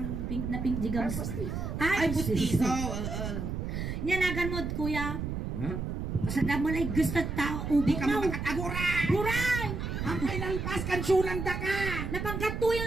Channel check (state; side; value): noise; right; rumble, 4 dB below the sound